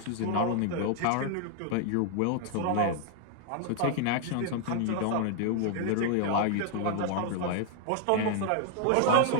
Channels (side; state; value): both; different; correlation 0.00